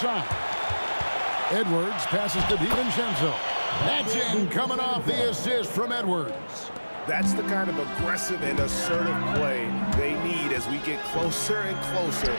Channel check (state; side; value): inverted; both; correlation -1.00